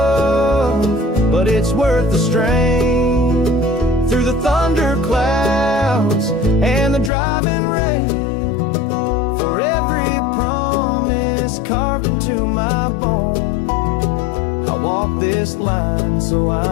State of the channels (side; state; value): right; drops out; at 7.1 s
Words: but it's worth the strain. Through the thunder clouds and the driving rain, for every promise carved into my bone, I walk this line so